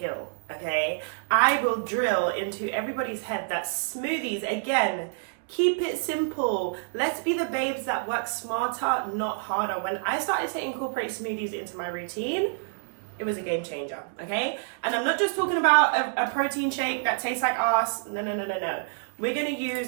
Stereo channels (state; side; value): silent; left; digital silence